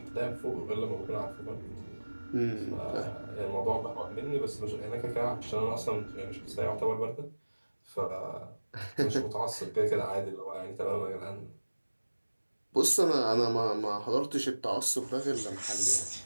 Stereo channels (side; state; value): both; inverted; correlation -1.00